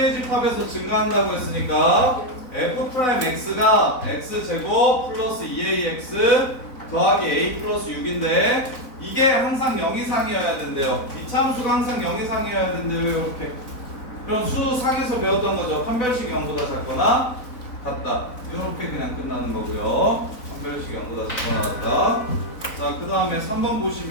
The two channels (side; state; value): right; late; 4.0 ms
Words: 집합에서 증가한다고 했으니까 f'x가 x제곱 플러스 2ax 더하기 a 플러스 6인데 이게 항상 0 이상이어야 된대요. 이차함수가 항상 0 이상이어야 된대요. 이렇게. 그럼 수상에서 배웠던 거죠. 판별식 0보다 작거나 같다. 이렇게 그냥 끝나는 거고요. 판별식 0보다 작거나 같다. 자, 그 다음에 3번